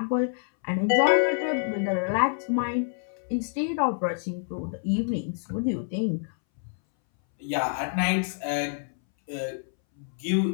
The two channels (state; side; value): silent; right; 60 dB below the other